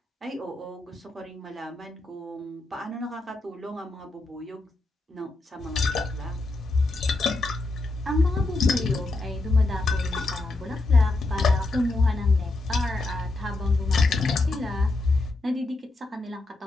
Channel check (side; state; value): right; quieter; 3.1 dB